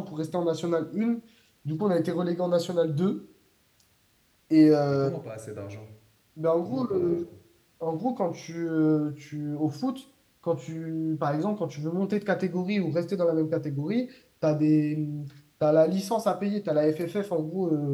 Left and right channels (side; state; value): both; identical; correlation 1.00